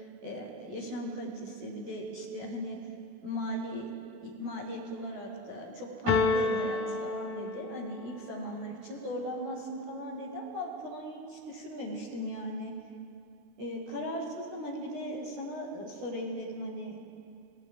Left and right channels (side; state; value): left; late; 16 ms